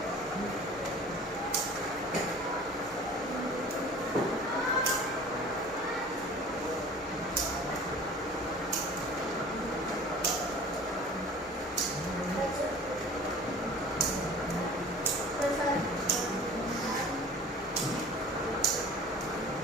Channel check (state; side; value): normal; both; correlation 0.43